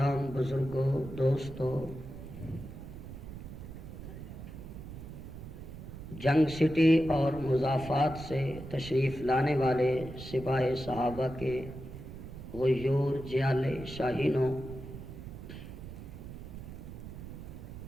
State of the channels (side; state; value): right; noise; rumble, 11 dB below the sound